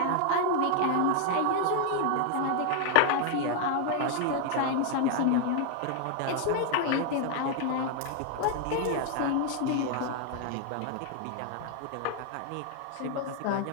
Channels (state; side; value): different; both; correlation 0.00